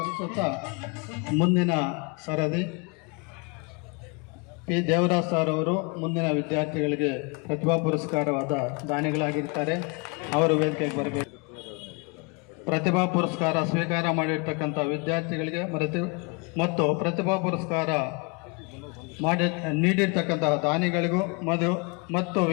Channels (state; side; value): quieter; right; 31.0 dB